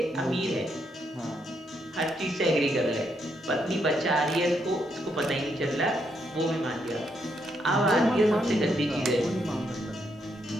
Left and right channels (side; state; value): both; normal; correlation 0.77